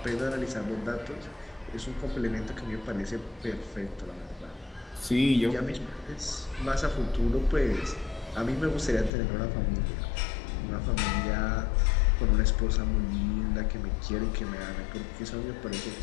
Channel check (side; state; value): right; drops out; at 9.1 s